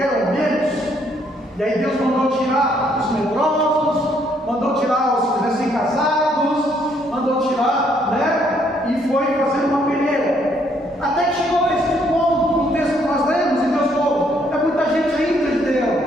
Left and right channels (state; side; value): normal; both; correlation 0.69